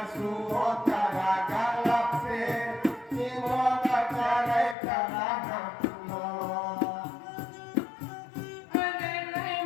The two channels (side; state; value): right; drops out; at 4.8 s